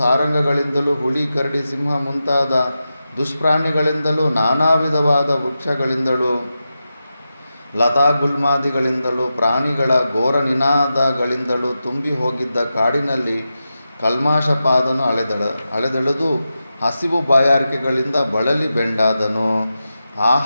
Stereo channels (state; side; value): inverted; both; correlation -0.91